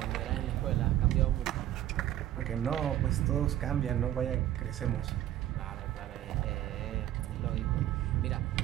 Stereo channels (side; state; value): left; quieter; 12.8 dB